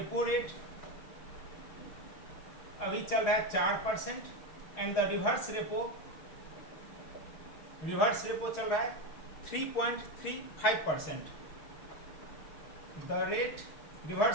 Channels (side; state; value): right; late; 6.6 ms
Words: रेट अभी चल रहा है 4% एंड द रिवर्स रेपो चल रहा है 3.35%। द रेट